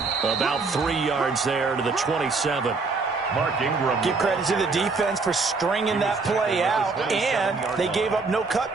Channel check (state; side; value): quieter; left; 4.1 dB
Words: About 3 yards there to the 27. Mark Ingram. Give credit to the defense for stringing that play out, and they gave up no